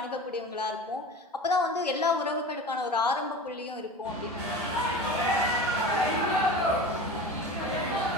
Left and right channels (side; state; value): both; normal; correlation 0.33